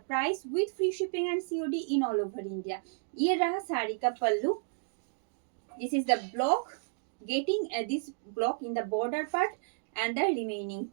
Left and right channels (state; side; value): silent; left; digital silence